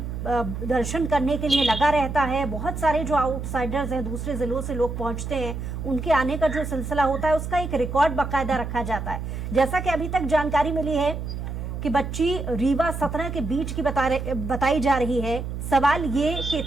दर्शन करने के लिए लगा रहता है। बहुत सारे जो आउटसाइडर्स हैं, दूसरे जिलों से लोग पहुंचते हैं, उनके आने का जो सिलसिला होता है उसका एक रिकॉर्ड बाकायदा रखा जाता है। जैसा कि अभी तक जानकारी मिली है कि बच्ची रीवा 17 के बीच की बताई जा रही है। सवाल ये कि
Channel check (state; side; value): noise; right; hum, 6 dB below the sound